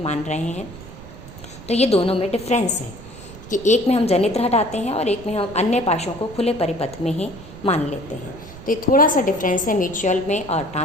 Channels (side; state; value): right; noise; rumble, 16 dB below the sound